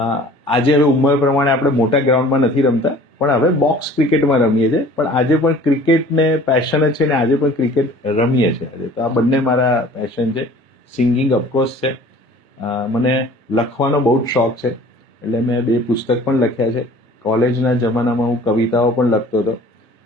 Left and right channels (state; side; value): normal; both; correlation 0.48